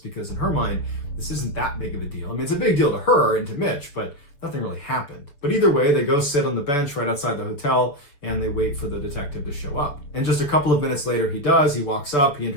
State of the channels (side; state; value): right; late; 6.9 ms